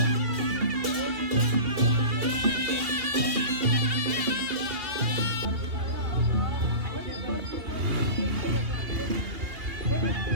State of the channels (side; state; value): left; late; 2.9 ms